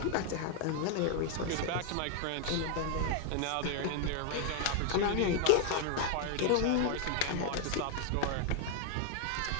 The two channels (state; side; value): different; both; correlation 0.00